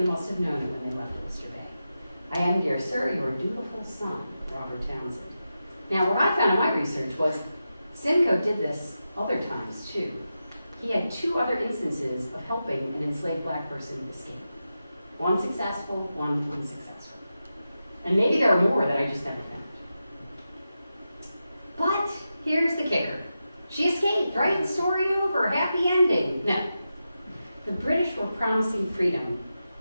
must have known it when they left Oyster Bay. I am, dear sir, your dutiful son, Robert Townsend. Now, what I found in my research was Simcoe did this other times, too. He had 2 other instances of helping an enslaved black person escape. One successful, one unsuccessful. And maybe there are more that I just never found. But here's the kicker. She escaped, right? Story over, happy ending. No. The British were promising freedom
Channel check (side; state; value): both; inverted; correlation -0.90